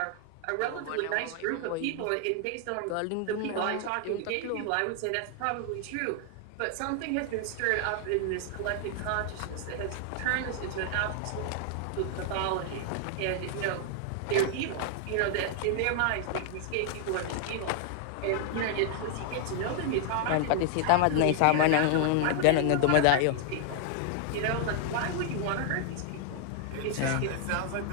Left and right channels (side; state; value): both; different; correlation 0.00